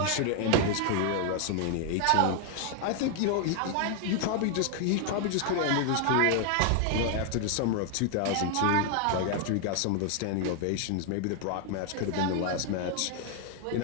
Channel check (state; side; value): different; both; correlation 0.00